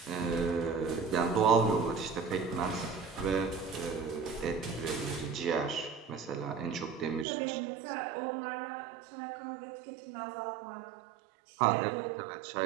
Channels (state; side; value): drops out; left; at 7.2 s